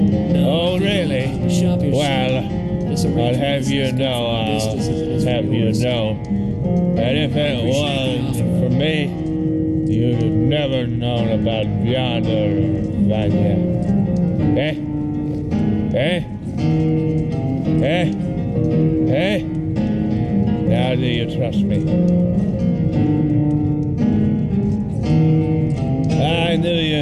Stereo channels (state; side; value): identical; both; correlation 1.00